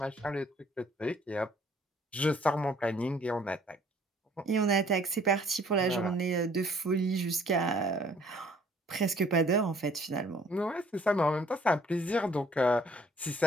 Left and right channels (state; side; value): normal; both; correlation 0.59